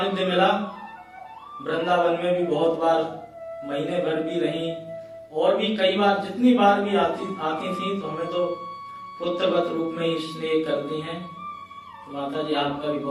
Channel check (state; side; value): identical; both; correlation 1.00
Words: मिला, वृंदावन में भी बहुत बार महीने भर भी रही, और भी कई बार जितनी बार भी आती थी तो हमें तो पुत्रवत रूप में ही स्नेह करती हैं। तो माता जी आपका भी